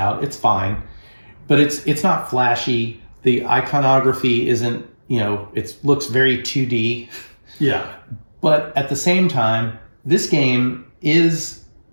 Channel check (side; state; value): both; inverted; correlation -1.00